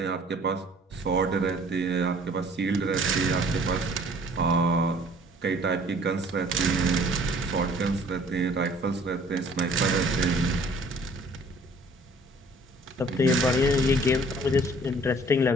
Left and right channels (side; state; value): both; normal; correlation 0.54